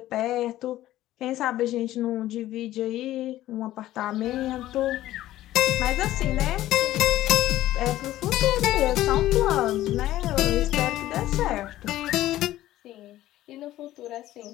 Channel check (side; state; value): right; quieter; 14.6 dB